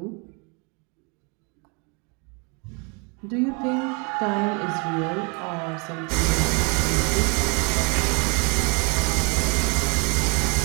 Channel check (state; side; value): quieter; left; 33.1 dB